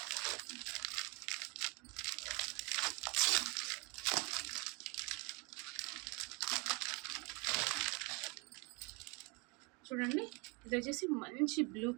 చూడండి, ఇది వచ్చేసి మంచి బ్లూ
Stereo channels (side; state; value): left; quieter; 29.5 dB